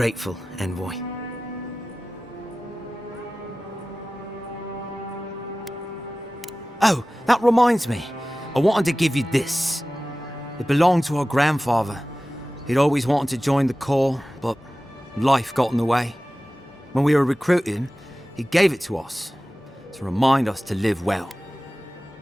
Envoy. Oh, that reminds me. I wanted to give you this. It belonged to our grandfather. He'd always wanted to join the Corps, but life got in the way. When we were recruiting, he gave it to us to remind us to live well.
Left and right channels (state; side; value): normal; both; correlation 0.96